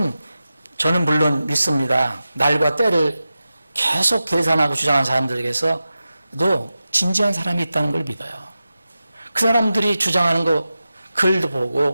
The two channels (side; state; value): both; inverted; correlation -0.93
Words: 저는 물론 믿습니다. 날과 때를 계속 계산하고 주장하는 사람들에게서도 진지한 사람이 있다는 걸 믿어요. 그 사람들이 주장하는 거 글도